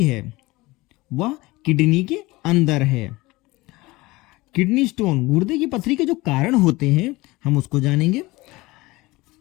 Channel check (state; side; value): quieter; right; 21.0 dB